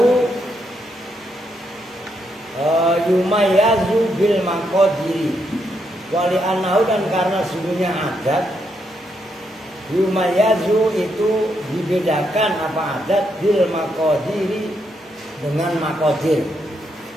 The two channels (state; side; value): normal; both; correlation 0.79